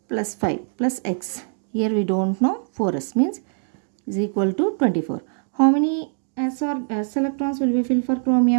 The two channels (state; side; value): silent; left; digital silence